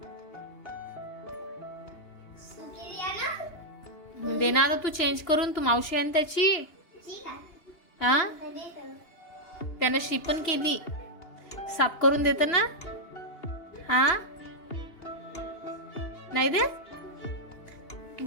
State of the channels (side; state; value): right; late; 2.8 ms